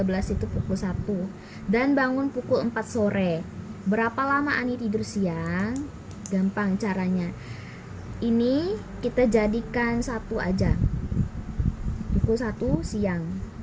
itu pukul 1. Dan bangun pukul 4 sore. Berapa lama Ani tidur siang? Gampang caranya. Ini kita jadikan 1 aja. Pukul 1 siang.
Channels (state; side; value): identical; both; correlation 1.00